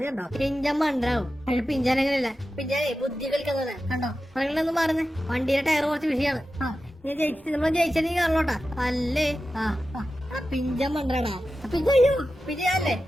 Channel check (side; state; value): both; normal; correlation 0.93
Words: കണ്ടോ പിഞ്ചാൻ മണ്ടാവും. പക്ഷെ പിഞ്ചാൻ അങ്ങനെയല്ല, പിഞ്ചാനെ ബുദ്ധി കളിക്കുന്നത് കണ്ടോ. പറയണെന്ന് പറഞ്ഞേ വണ്ടിയുടെ ടയർ കുറച്ച് വിഷയമാണ്. നമ്മൾ ജയിച്ചത് കാണോട്ടാ. അല്ലേ പിഞ്ചാൻ മണ്ടാടാ. പിഞ്ചയ്യോ പിഞ്ചല്ലേ